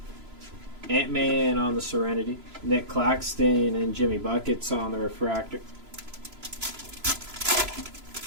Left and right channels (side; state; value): left; late; 3.0 ms